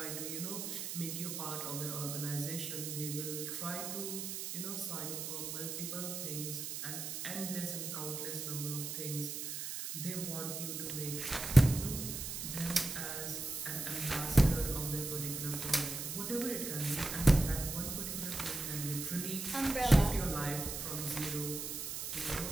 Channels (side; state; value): right; noise; hiss, 5 dB below the sound